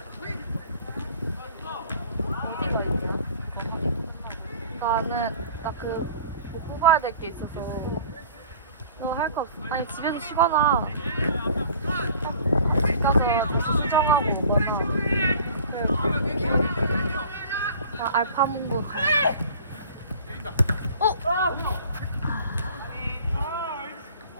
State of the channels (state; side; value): inverted; both; correlation -0.47